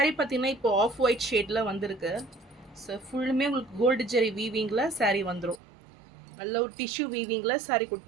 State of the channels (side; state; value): left; drops out; at 5.6 s